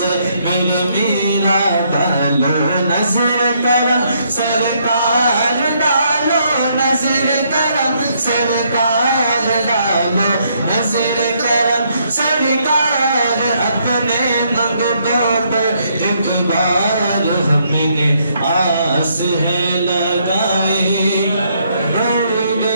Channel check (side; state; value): both; inverted; correlation -0.72